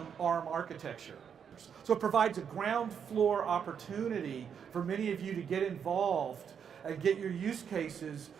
ARM architecture. So it provides a ground floor opportunity for many of you to get involved and get your use cases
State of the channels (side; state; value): left; quieter; 7.5 dB